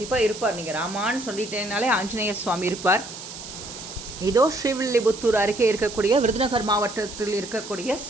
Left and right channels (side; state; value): right; noise; hiss, 12 dB below the sound